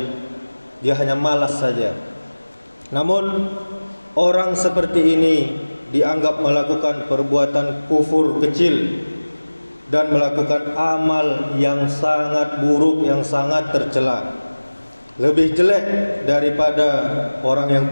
Dia hanya malas saja. Namun orang seperti ini dianggap melakukan perbuatan kufur kecil dan melakukan amal yang sangat buruk, yang sangat tercela. Lebih jelek daripada orang yang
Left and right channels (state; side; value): inverted; both; correlation -1.00